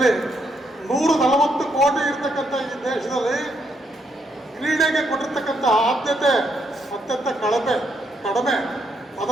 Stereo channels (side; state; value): both; normal; correlation 0.76